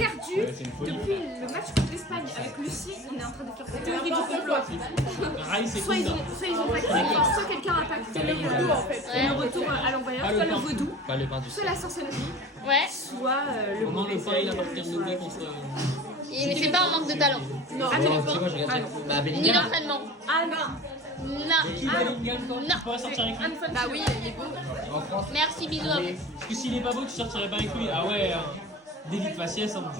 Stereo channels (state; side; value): normal; both; correlation 0.37